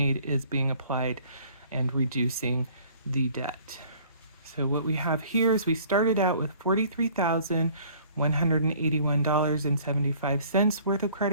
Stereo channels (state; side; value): inverted; both; correlation -0.54